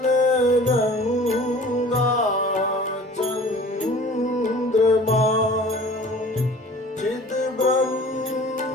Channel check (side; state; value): both; normal; correlation 0.46